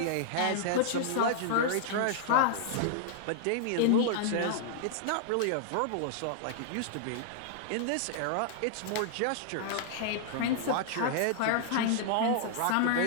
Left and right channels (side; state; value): both; different; correlation -0.01